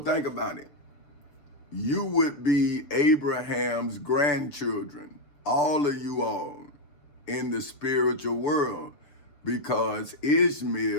about it. You would be Abraham's grandchildren, all of you all, in the spiritual world, because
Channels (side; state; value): right; late; 6.8 ms